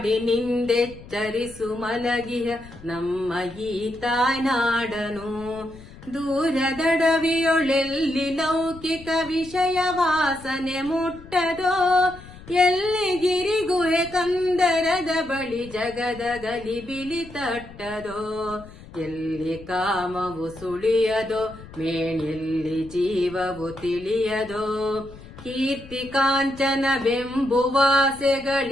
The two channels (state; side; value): noise; left; rumble, 18 dB below the sound